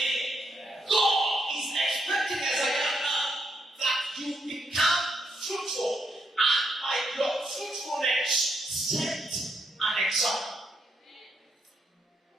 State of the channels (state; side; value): normal; both; correlation 0.78